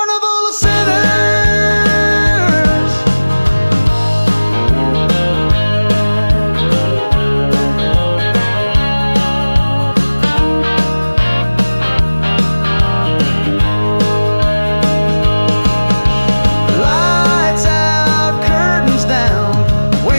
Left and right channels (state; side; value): inverted; both; correlation -1.00